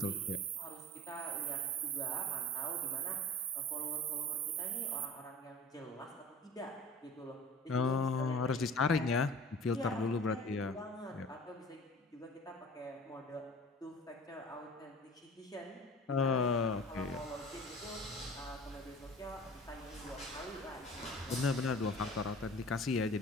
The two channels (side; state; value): both; normal; correlation 0.42